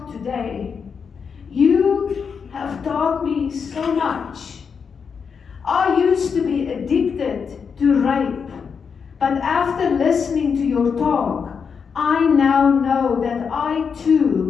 today. You have taught me so much. I used to be addicted to rape, but after listening to your talk, I now know that I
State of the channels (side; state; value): right; quieter; 6.2 dB